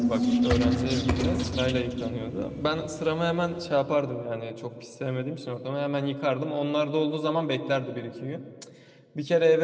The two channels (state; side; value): identical; both; correlation 1.00